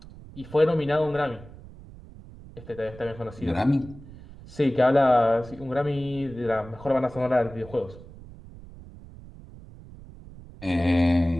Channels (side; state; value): right; noise; rumble, 18 dB below the sound